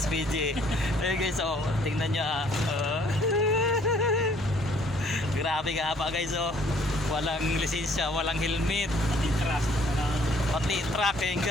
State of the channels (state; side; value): normal; both; correlation 0.61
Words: Ayun guys, oh, tingnan nyo, ah. Grabe ka pa guys, oh. Walang lisensya, walang helmet. Pati trust. Pati truck, yun